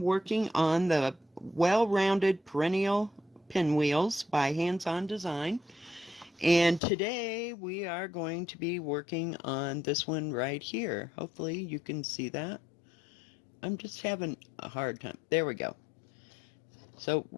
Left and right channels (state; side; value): drops out; right; at 6.8 s